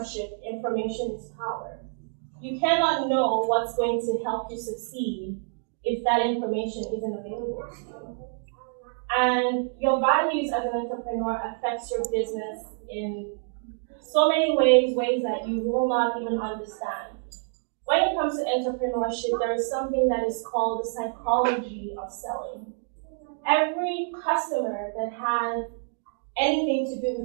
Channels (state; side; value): silent; left; digital silence